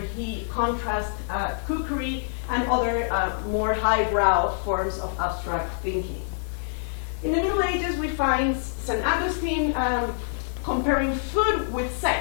contrasts cookery and other more highbrow forms of abstract thinking. In the Middle Ages, we find St. Augustine comparing food with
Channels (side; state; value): right; silent; digital silence